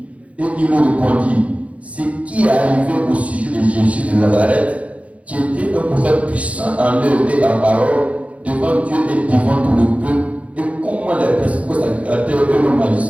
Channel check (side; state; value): left; late; 0.065 ms